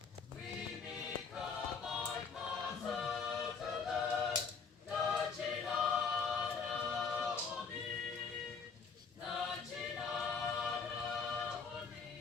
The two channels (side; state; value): right; quieter; 5.4 dB